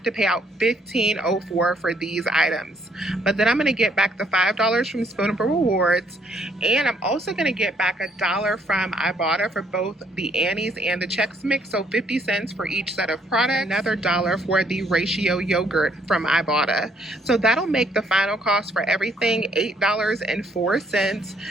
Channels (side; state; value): both; normal; correlation 0.67